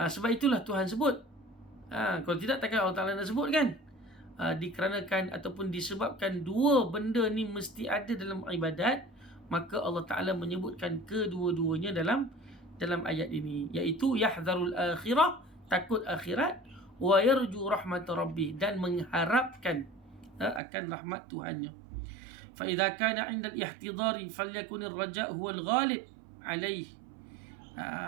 itulah Tuhan sebut. Kalau tidak, takkan Allah Ta'ala nak sebut kan? Dikarenakan ataupun disebabkan dua benda ni mesti ada dalam ibadat, maka Allah Ta'ala menyebutkan kedua-duanya dalam dalam ayat ini, iaitu yahdharul akhirah, takut akhirat, wa yarju rahmat rabbih, dan mengharapkan akan rahmat Tuhannya. Fa idza kana 'inda al-ihtidari falyakun ar-raja' huwa al-ghalib alaih.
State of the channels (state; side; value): drops out; left; at 20.6 s